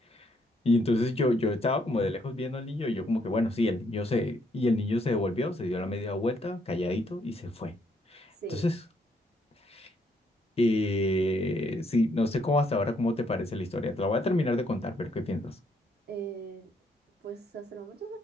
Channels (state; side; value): normal; both; correlation 0.71